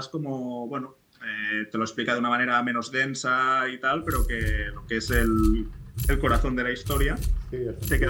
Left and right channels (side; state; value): both; identical; correlation 1.00